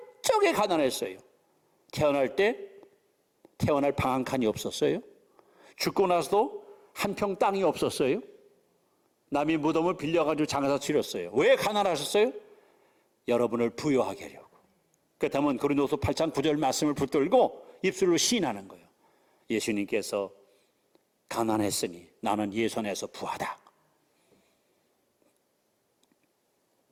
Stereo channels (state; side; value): identical; both; correlation 1.00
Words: 가난했어요. 태어날 방 한 칸이 없었어요. 죽고 나서도 한 평 땅이 없었어요. 남이 무덤을 빌려가지고 장사 치렀어요. 왜 가난하셨어요? 여러분을 부요하게 하려고. 그렇다면 고린도서 8장 9절 말씀을 붙들고 입술로 시인하는 거예요. 예수님께서 가난했으니 나는 예선에서 부하다.